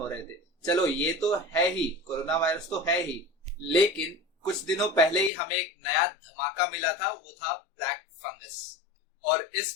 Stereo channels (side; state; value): right; drops out; at 5.3 s